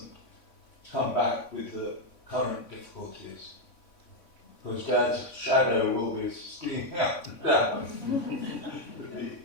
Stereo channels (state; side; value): late; right; 3.6 ms